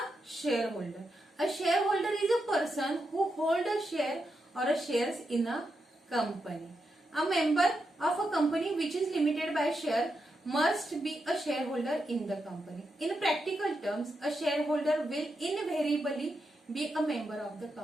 shareholder. A shareholder is a person who holds a share or a shares in a company. A member of a company which is limited by share must be a shareholder in the company. In practical terms, a shareholder will invariably be a member of the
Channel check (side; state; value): both; normal; correlation 0.85